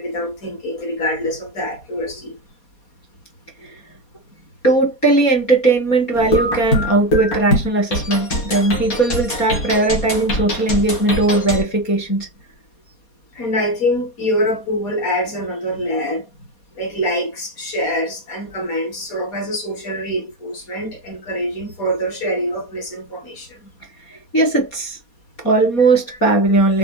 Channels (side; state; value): right; late; 4.2 ms